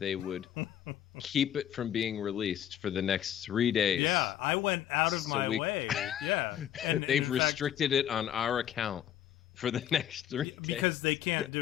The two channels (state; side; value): quieter; right; 10.9 dB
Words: would keep it from being released for the next 3 days. Yeah, I went out of my way. Yeah, and they've restricted it on our account for the next 3 days. Because they can't